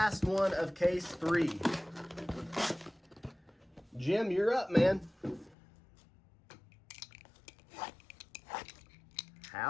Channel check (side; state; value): right; drops out; at 5.6 s